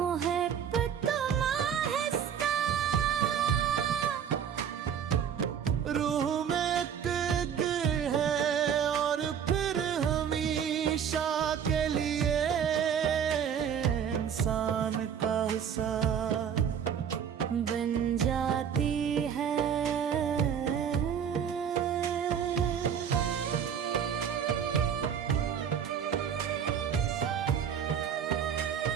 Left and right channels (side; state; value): left; quieter; 8.1 dB